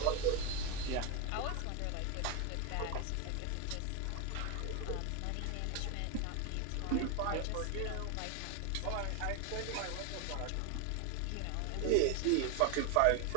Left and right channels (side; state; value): both; different; correlation 0.02